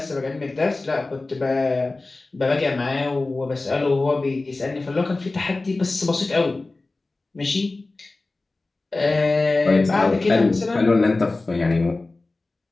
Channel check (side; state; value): right; quieter; 3.3 dB